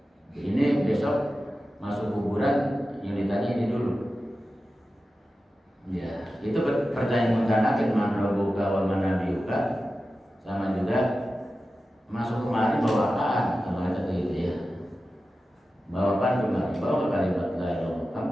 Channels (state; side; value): normal; both; correlation 0.93